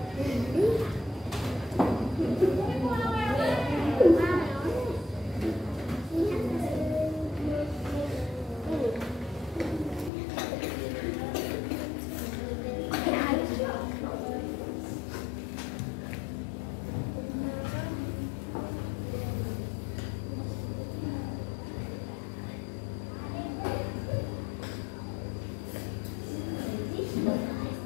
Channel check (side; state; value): right; drops out; at 10.1 s